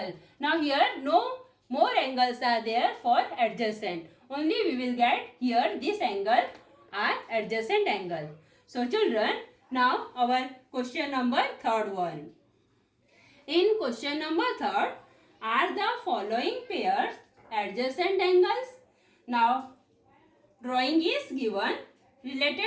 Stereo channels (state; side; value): identical; both; correlation 1.00